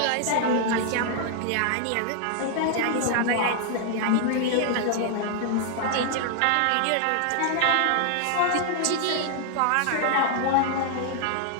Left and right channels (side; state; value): both; different; correlation 0.00